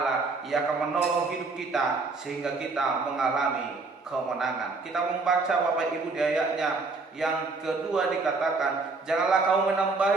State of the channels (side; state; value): left; quieter; 3.9 dB